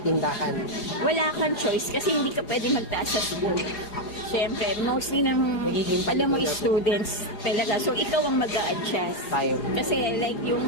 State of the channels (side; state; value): right; late; 4.8 ms